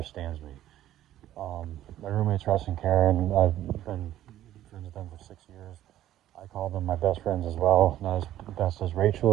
me. My roommates Russ and Karen, I've been friends with them for 6 years. I call them my best friends as well. Not as best as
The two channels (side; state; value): left; quieter; 12.9 dB